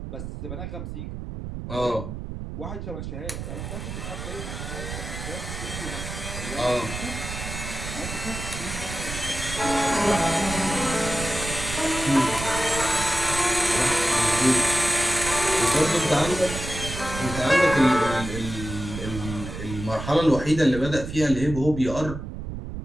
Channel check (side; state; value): right; noise; rumble, 8 dB below the sound